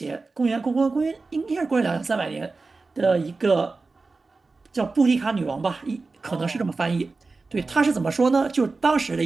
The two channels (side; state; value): left; quieter; 3.8 dB